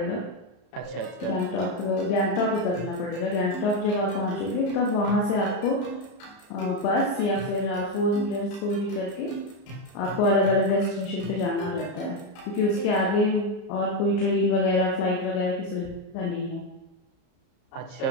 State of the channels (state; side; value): late; right; 33 ms